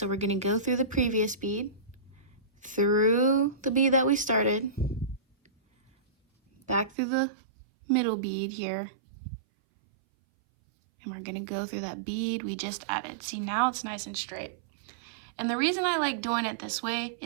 we're gonna go through the previous bead, through the bead that we started, back through the middle bead here, and we're gonna go through that bead we just added. See, now it's nice and straight. And the reason I like doing it this way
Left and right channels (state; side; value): drops out; left; at 7.0 s